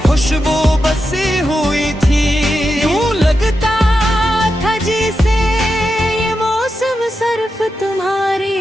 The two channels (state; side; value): normal; both; correlation 0.88